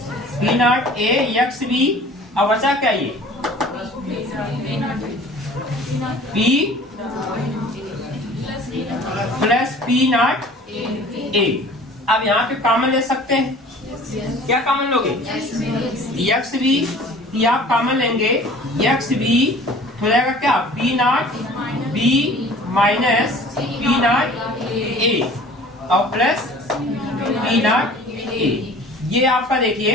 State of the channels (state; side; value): normal; both; correlation 0.47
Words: not A X B. अब बचा क्या ये? P plus P not A. अब यहाँ पे कॉमन ले सकते हैं, क्या कॉमन लोगे? एक्स बी, ये आप कॉमन लेंगे, एक्स बी हो जाएगा क्या? P not B minus P not ए और प्लस पी नॉट ए। ये आपका